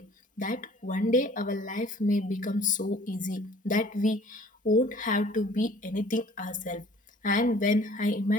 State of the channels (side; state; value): both; normal; correlation 0.52